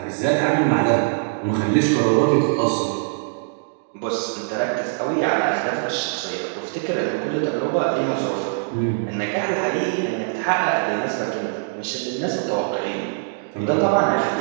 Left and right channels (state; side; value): silent; left; digital silence